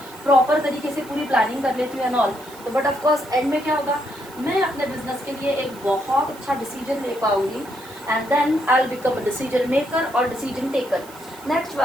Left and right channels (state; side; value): noise; right; hiss, 21 dB below the sound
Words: प्रॉपर तरीके से पूरी प्लानिंग कर लेती हूँ एंड ऑल, तो बट ऑफ कोर्स एंड में क्या होगा, मैं अपने बिजनेस के लिए एक बहुत अच्छा डिसीजन ले पाऊँगी and then I will become a decision maker और decision taker. Next